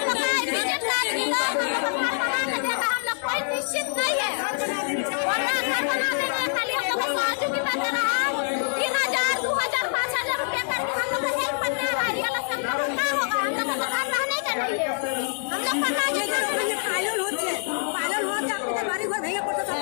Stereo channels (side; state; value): right; silent; digital silence